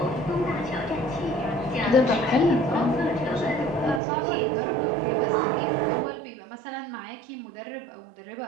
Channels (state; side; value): drops out; left; at 4.0 s